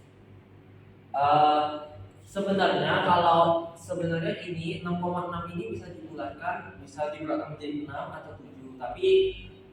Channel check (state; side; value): identical; both; correlation 1.00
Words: Sebenarnya ini 6,6 ini bisa dibulatkan menjadi 6 atau 7, tapi